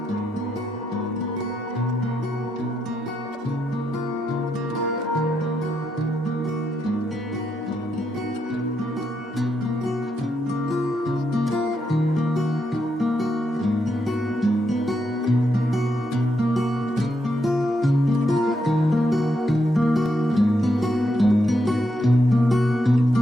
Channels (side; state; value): both; normal; correlation 0.80